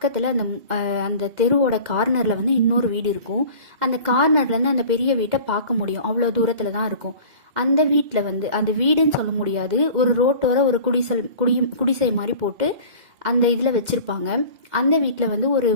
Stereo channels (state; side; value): late; left; 2.1 ms